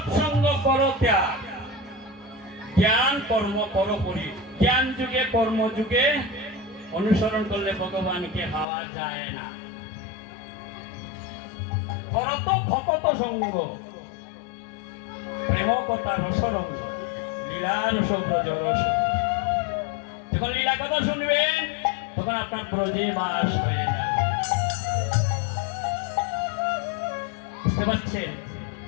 করো ত্যাগ, জ্ঞান কর্ম করো পরি। জ্ঞান যুগে কর্ম যুগে অনুসরণ করলে ভগবানকে পাওয়া যায় না। করত ভকত সঙ্গ, প্রেম কথা রসরঙ্গ, লীলা রস ব্রজ রস। যখন লীলা কথা শুনবেন তখন আপনার ব্রজে বাস হয়ে যাবে। বুঝতে পারছেন?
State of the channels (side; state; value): right; drops out; at 8.7 s